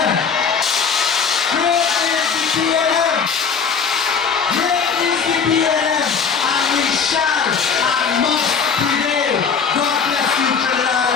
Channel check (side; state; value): right; quieter; 6.0 dB